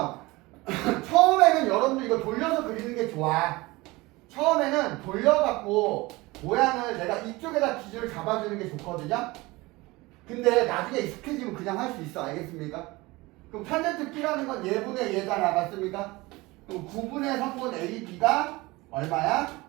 처음에는 여러분들 이거 돌려서 그리는 게 좋아. 처음에는 돌려갖고 모양을 내가 이쪽에다 기준을 잡아주는 게 좋거든요. 근데 나중에 익숙해지면 그냥 할 수 있어. 알겠습니까? 그럼 탄젠트 B라는 건 얘분의 얘잖아. 맞습니까? 그럼 9분의 3분 AB가 얼마야?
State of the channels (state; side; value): quieter; left; 21.8 dB